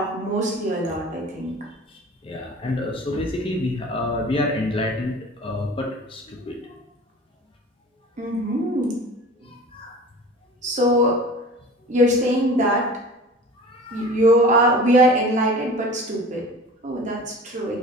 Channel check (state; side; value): normal; both; correlation 0.39